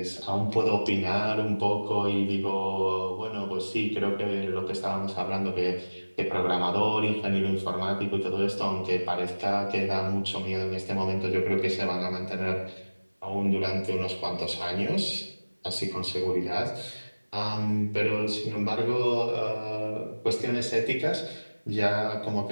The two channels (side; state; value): both; inverted; correlation -1.00